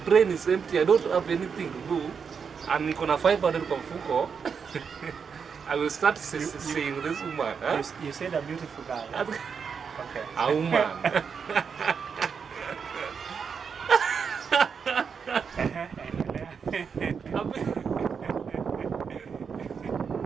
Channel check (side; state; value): left; quieter; 6.2 dB